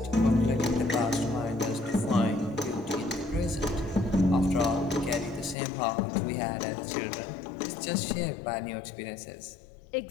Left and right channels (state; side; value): drops out; right; at 5.6 s